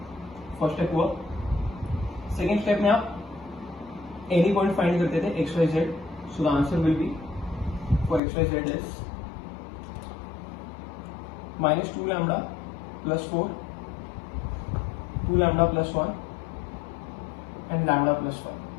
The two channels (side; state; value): right; drops out; at 8.2 s